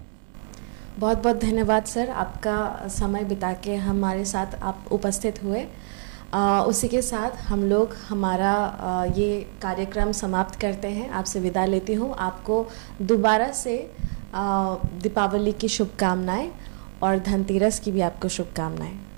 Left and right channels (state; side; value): silent; left; digital silence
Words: बहुत बहुत धन्यवाद सर, आपका समय बिता के हमारे साथ आप उपस्थित हुए। उसी के साथ हम लोग हमारा ये कार्यक्रम समाप्त करते हैं, आपसे विदा लेती हूँ। आपको दोबारा से दीपावली की शुभकामनाएं और धनतेरस की भी आपको शुभकामनाएं।